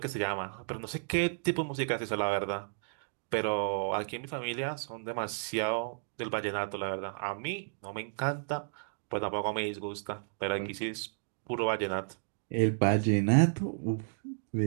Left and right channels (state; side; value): silent; left; digital silence